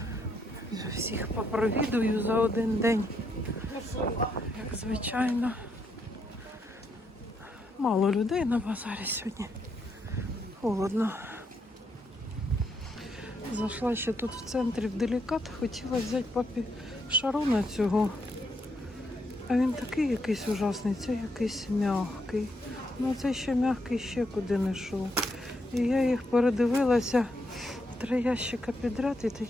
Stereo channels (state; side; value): normal; both; correlation 0.77